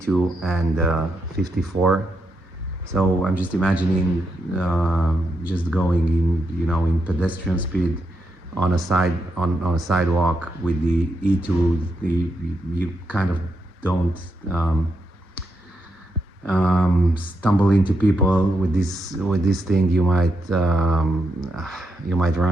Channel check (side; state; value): both; normal; correlation 0.82